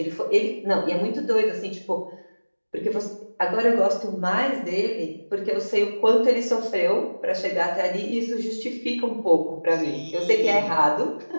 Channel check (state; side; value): inverted; both; correlation -1.00